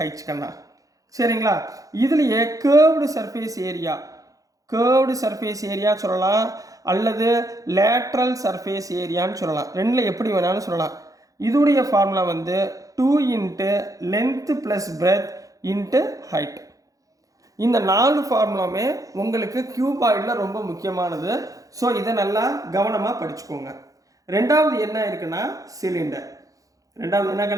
கண்ணா, சரிங்களா? இதுலேயே கேர்வ்டு சர்ஃபேஸ் ஏரியா சொல்லலாம், அல்லது லேட்ரல் சர்ஃபேஸ் ஏரியான்னு சொல்லலாம். ரெண்டில் எப்படி வேணாலும் சொல்லலாம். இதோடைய ஃபார்முலா வந்து 2 into length plus breadth into height. இந்த 4 ஃபார்முலாமே உங்களுக்கு கியூபாய்டில் ரொம்ப முக்கியமானது. ஸோ இதை நல்லா கவனமாக படிச்சுக்கோங்க. ரெண்டாவது என்ன இருக்குன்னா சிலிண்டர். ரெண்டாவது என்ன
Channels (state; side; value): late; left; 0.17 ms